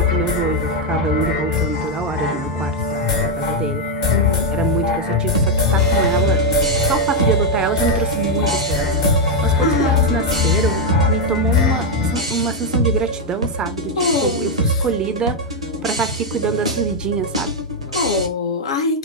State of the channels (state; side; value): normal; both; correlation 0.02